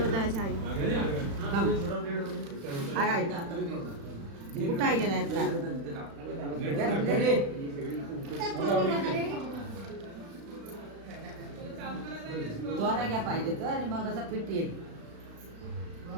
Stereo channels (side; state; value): left; late; 36 ms